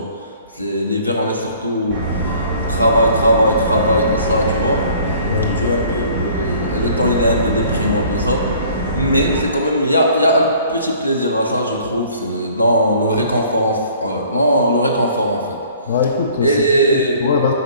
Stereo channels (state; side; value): inverted; both; correlation -0.54